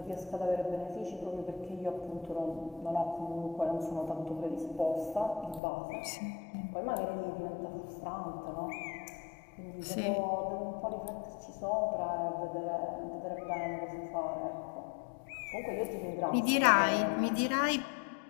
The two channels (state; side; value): drops out; right; at 5.6 s